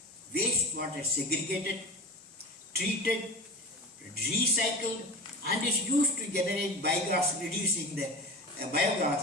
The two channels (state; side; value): normal; both; correlation 0.30